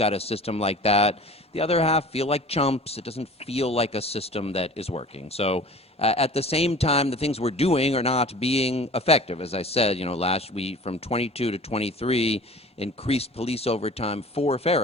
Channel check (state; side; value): normal; both; correlation 0.42